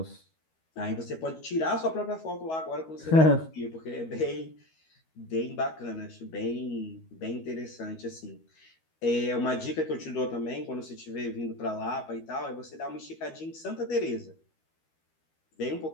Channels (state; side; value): late; right; 13 ms